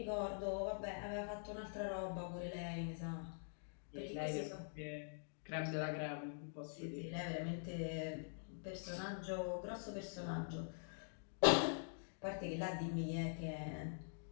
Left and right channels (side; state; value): right; silent; digital silence